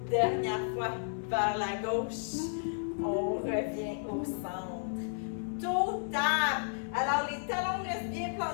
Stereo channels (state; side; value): silent; right; 55 dB below the other